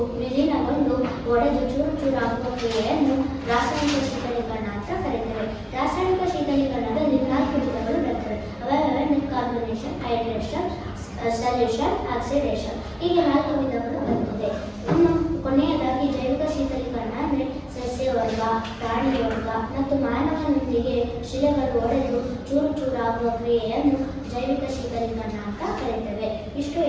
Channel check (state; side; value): identical; both; correlation 1.00